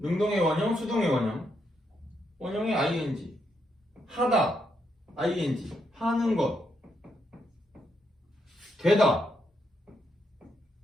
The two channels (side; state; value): both; normal; correlation 0.79